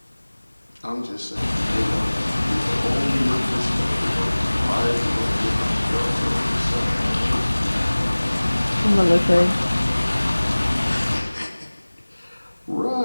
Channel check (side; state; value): both; inverted; correlation -1.00